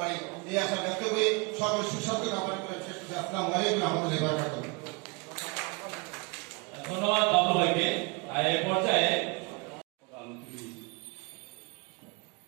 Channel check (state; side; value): quieter; left; 30.1 dB